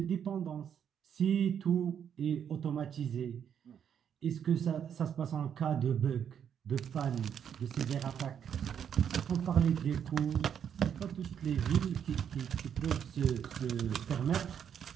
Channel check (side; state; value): left; quieter; 8.4 dB